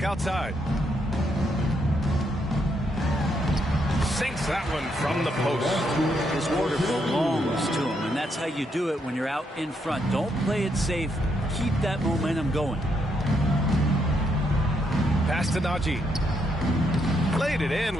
outside. Sinks that one from the post. His order belongs to him, and that's how you do it when you're out in front. Don't play it safe. Keep that momentum going. Pass to Najee. Played it in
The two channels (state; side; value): normal; both; correlation 0.77